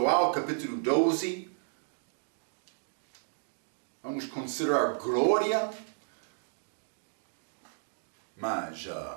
capítulo 12. Vamos considerar glória. Mas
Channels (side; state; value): left; silent; digital silence